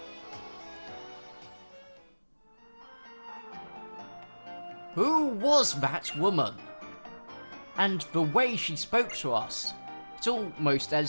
Who was that woman? And the way she spoke to us. It's almost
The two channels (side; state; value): both; inverted; correlation -1.00